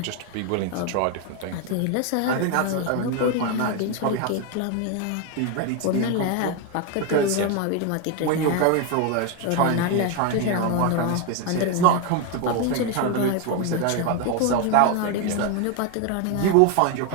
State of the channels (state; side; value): different; both; correlation 0.01